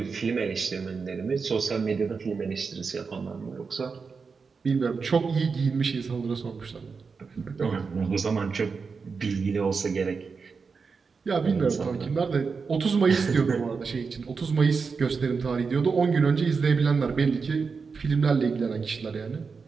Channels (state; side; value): quieter; left; 5.1 dB